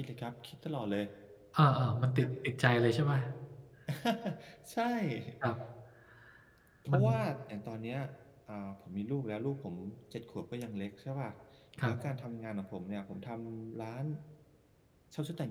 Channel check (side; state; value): both; identical; correlation 1.00